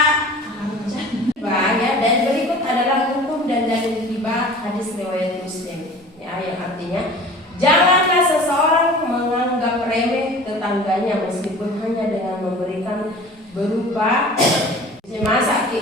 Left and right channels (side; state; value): both; normal; correlation 0.42